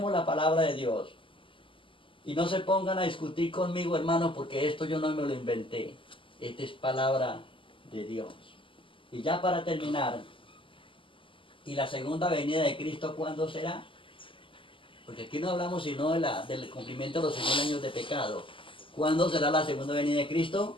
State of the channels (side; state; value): right; late; 0.25 ms